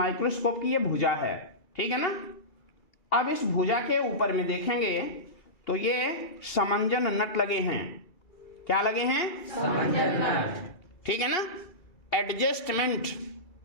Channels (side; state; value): right; late; 2.3 ms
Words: की ये भुजा है, ठीक है ना। अब इस भुजा के ऊपर में देखेंगे तो ये समंजन नट लगे हैं। क्या लगे हैं? समंजन नट, ठीक है ना। एडजस्टमेंट,